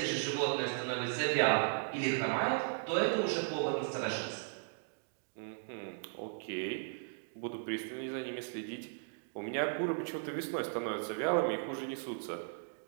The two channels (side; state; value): left; silent; digital silence